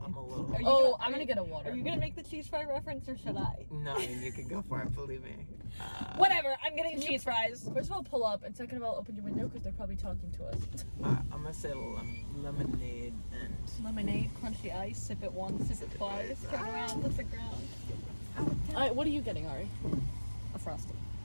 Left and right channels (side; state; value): both; inverted; correlation -1.00